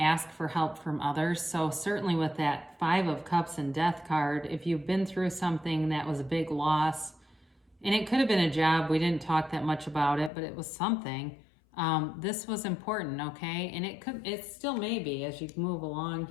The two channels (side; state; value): right; drops out; at 10.3 s